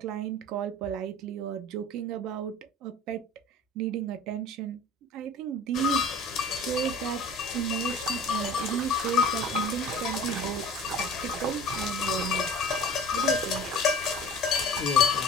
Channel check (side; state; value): both; normal; correlation 0.42